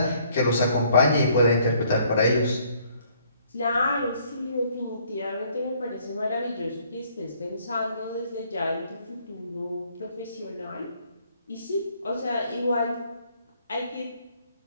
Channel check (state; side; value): inverted; both; correlation -0.64